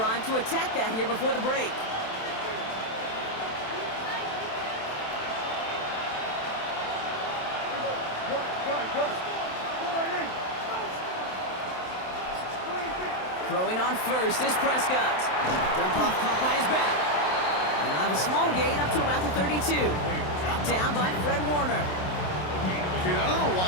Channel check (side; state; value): right; late; 27 ms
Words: to attack that here before the break. Throwing on 1st is Prescott. Dump off caught by his back. And they'll have a small gain up to about the 32. Dropped down by Fred Warner. Kid, I don't know